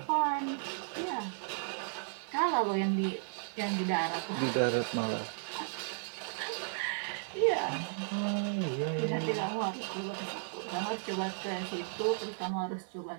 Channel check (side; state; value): left; silent; 55 dB below the other